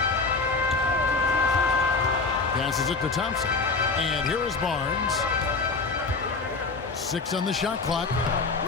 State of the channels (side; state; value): right; quieter; 4.1 dB